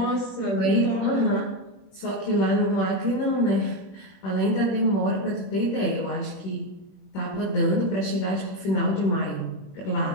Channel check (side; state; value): right; late; 21 ms